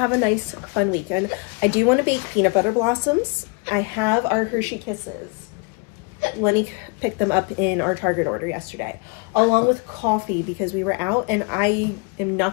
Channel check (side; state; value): right; quieter; 30.7 dB